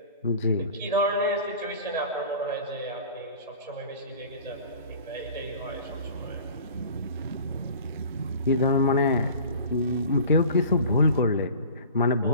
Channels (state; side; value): inverted; both; correlation -0.43